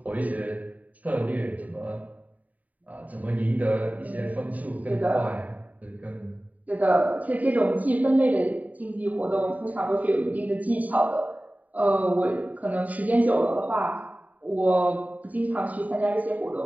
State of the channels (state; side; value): late; left; 0.073 ms